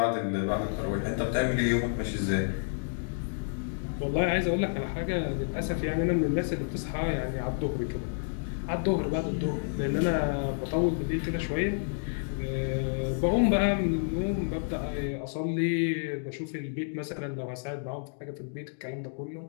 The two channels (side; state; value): right; silent; digital silence